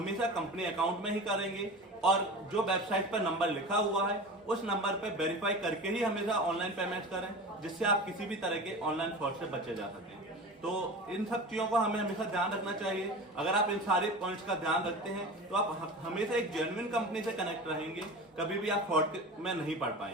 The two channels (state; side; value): normal; both; correlation 0.32